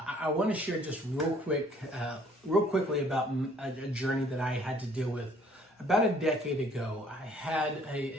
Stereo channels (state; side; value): normal; both; correlation 0.59